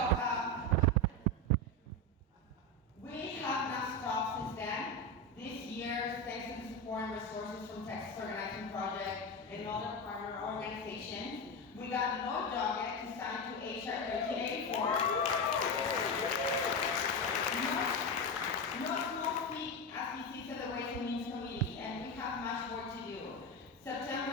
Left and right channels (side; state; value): both; normal; correlation 0.16